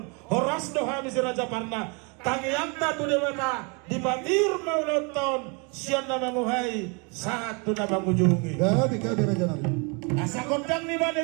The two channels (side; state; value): left; quieter; 32.6 dB